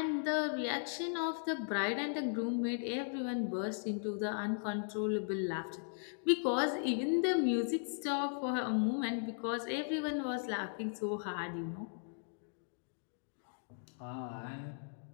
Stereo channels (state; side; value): silent; right; digital silence